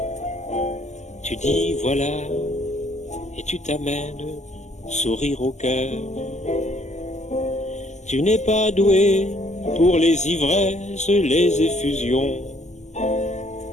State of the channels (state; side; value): late; right; 0.33 ms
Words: Tu dis voilà et tu t'amènes sourire au cœur. Tu n'es pas doué pour les ivresses, les effusions.